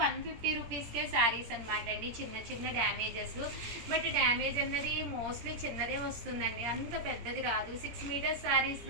150 రూపీస్కే శారీస్ అనమాట అండి. చిన్న చిన్న డ్యామేజెస్, బట్ డ్యామేజ్ అన్నది మోస్ట్లీ చిన్నదే వస్తుందండి, అంత పెద్దది రాదు. 6 మీటర్స్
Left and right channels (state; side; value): late; left; 17 ms